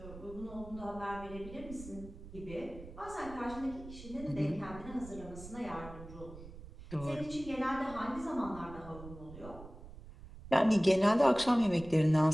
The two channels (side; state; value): right; noise; rumble, 15 dB below the sound